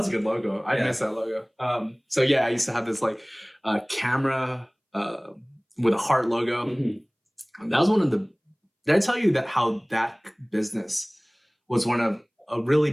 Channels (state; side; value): identical; both; correlation 1.00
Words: a good logo. I miss that logo. So yeah, I used to have this camera with a heart logo. Mm-hmm. That was one of the. Did I tell you how that business was a really